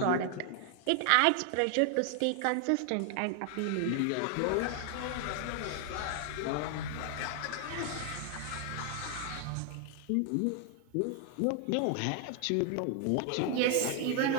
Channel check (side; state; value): both; different; correlation 0.00